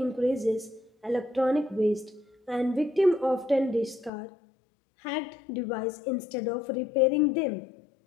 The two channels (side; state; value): right; drops out; at 4.1 s